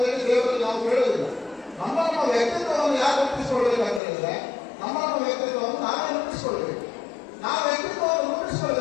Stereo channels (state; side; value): drops out; right; at 4.0 s